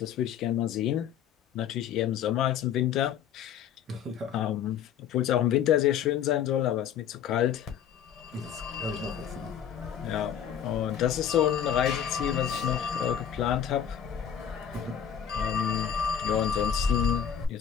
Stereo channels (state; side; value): quieter; right; 8.9 dB